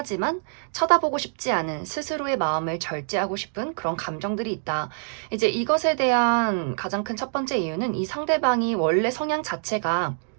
쳐다보고 싶지 않은 스스로의 마음을 절제하고 싶은 그런 감정들이 있다. 이제 이것에 대한 가장 큰 첫 번째 이유는 이 상대방이 원래 성향 자체가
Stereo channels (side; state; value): left; silent; digital silence